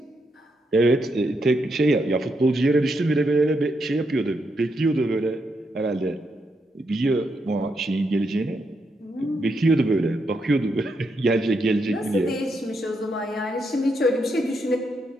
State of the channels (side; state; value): both; normal; correlation 0.81